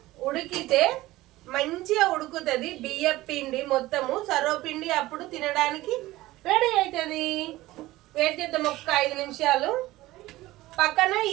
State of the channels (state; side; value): quieter; left; 17.6 dB